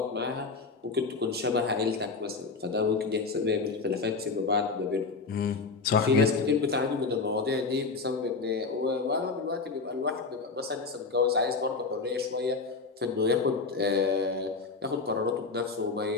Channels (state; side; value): quieter; right; 4.3 dB